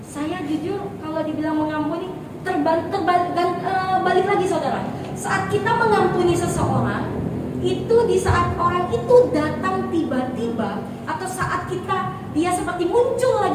Saya jujur kalau dibilang mengampuni balik lagi saudara. Saat kita mengampuni seseorang, itu di saat orang itu datang tiba-tiba, atau saat dia seperti muncul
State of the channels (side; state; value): both; identical; correlation 1.00